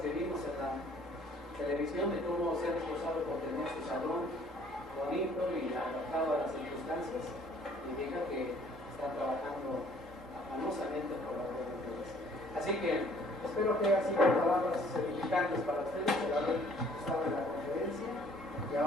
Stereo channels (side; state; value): both; normal; correlation 0.58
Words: vimos en la televisión de cómo se han esforzado por tener su salón bonito y adaptado a las circunstancias, indica que están trabajando afanosamente por la gloria de Dios. Así que espero que haya sido palabras edificantes para ustedes por haber estado en la conferencia y